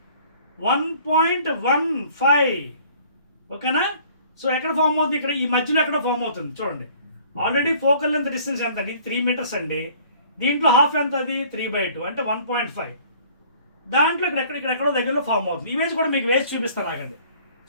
1.15. ఓకేనా? సో ఎక్కడ ఫామ్ అవుతుంది? ఇక్కడ ఈ మధ్యలో ఎక్కడ ఫామ్ అవుతుంది చూడండి. ఆల్రెడీ ఫోకల్ లెంత్ డిస్టెన్స్ ఎంత అండి? 3 మీటర్స్ అండి. దీంట్లో హాఫ్ ఎంత? అది 3/2 అంటే 1.5. దాంట్లో ఇక్కడెక్కడో దగ్గరలో ఫామ్ అవుతుంది. ఇమేజ్ కూడా మీకు వేసి చూపిస్తాను, ఆగండి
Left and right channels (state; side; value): inverted; both; correlation -0.54